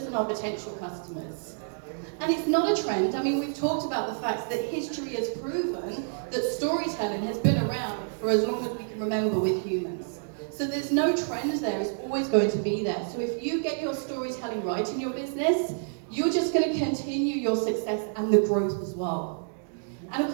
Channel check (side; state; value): left; silent; digital silence